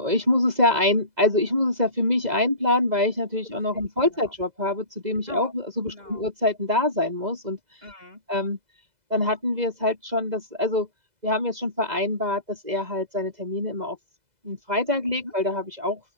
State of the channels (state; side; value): late; left; 2.0 ms